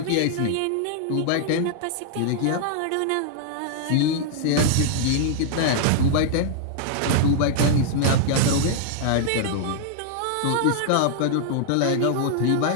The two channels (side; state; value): both; different; correlation 0.00